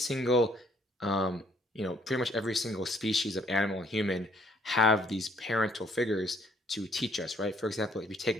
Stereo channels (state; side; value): normal; both; correlation 0.65